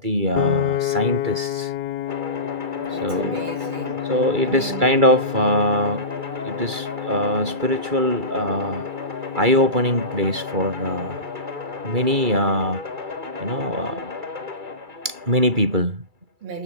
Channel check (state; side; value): late; left; 2.3 ms